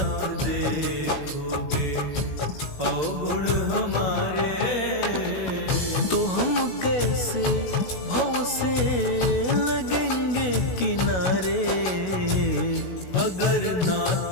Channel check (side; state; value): right; late; 16 ms